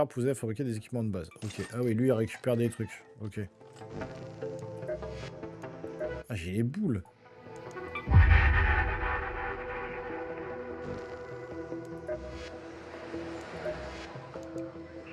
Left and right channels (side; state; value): both; identical; correlation 1.00